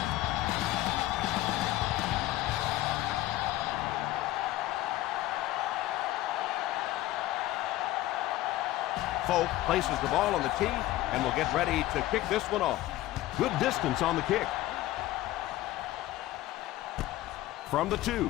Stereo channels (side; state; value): right; quieter; 15.9 dB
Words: Folk places the ball on the tee and will get ready to kick this one off. Good distance on the kick. From the